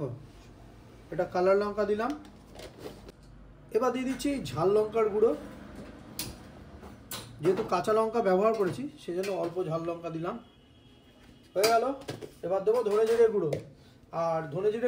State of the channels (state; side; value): identical; both; correlation 1.00